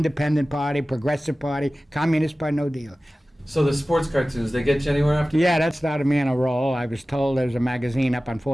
Party, Progressive Party, Communist Party, no deal. So the sports cartoons, they get you anywhere after? Yeah, that started me on a roll. I was told there was a magazine up on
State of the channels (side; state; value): both; normal; correlation 0.96